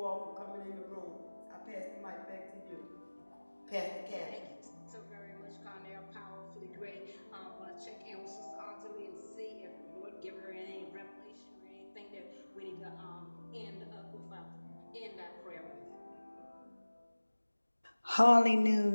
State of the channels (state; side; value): inverted; both; correlation -1.00